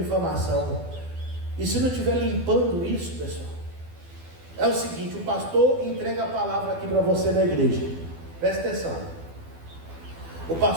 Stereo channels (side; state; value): left; late; 12 ms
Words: E se não estiver limpando isso, pessoal, é o seguinte: o pastor entrega a palavra aqui para você na igreja, presta atenção. O